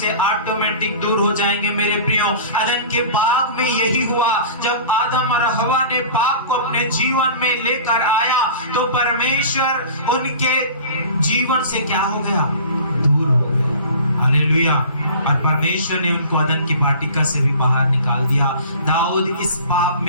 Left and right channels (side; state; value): both; inverted; correlation -0.41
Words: ऑटोमेटिक दूर हो जाएंगे। मेरे प्रियो, अदन के बाग में यही हुआ, जब आदम और हवा ने पाप को अपने जीवन में लेकर आया तो परमेश्वर उनके जीवन से क्या हो गया, दूर हो गया, हालेलुया। और परमेश्वर ने उनको अदन की वाटिका से भी बाहर निकाल दिया। दाऊद इस पाप